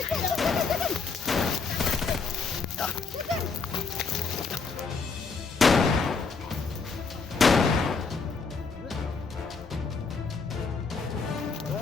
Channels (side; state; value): right; quieter; 4.8 dB